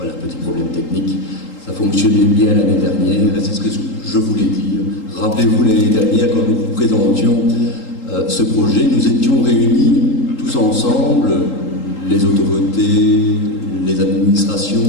petit problème technique. Ça fonctionnait bien l'année dernière, et c'est ce que je voulais dire. Rappelez-vous l'année dernière, quand nous vous présentions ce projet, nous étions réunis tous ensemble, les autorités, les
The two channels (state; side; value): late; right; 3.8 ms